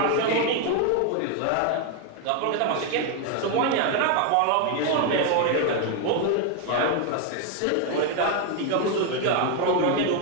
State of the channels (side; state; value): both; different; correlation 0.01